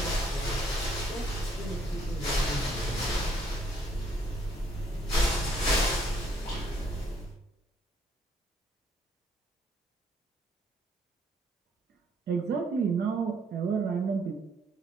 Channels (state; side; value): normal; both; correlation 0.67